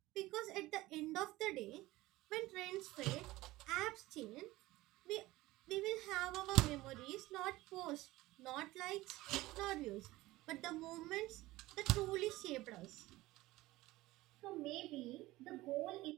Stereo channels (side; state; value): left; quieter; 18.3 dB